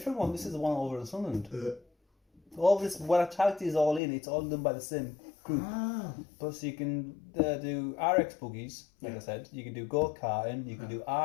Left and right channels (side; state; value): right; drops out; at 4.0 s